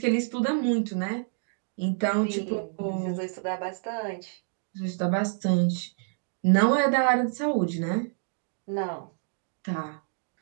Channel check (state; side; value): silent; left; digital silence